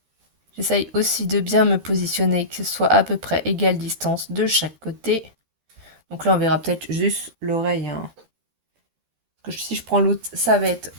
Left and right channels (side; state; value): left; late; 13 ms